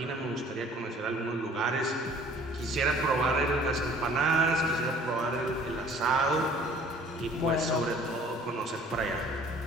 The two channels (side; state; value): both; normal; correlation 0.52